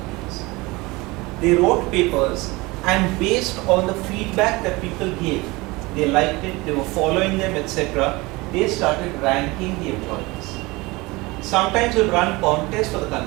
They wrote papers, and based on the feedback that people gave, they liked it, they were following them, etc. They started ranking the employees. Sometimes we'll run contests for the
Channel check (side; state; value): left; quieter; 22.9 dB